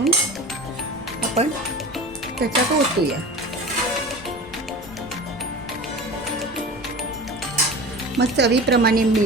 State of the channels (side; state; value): right; noise; rumble, 22 dB below the sound